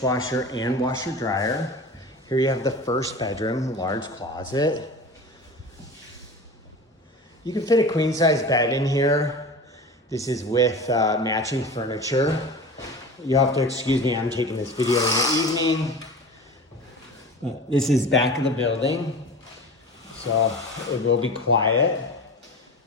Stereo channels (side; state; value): both; normal; correlation 0.33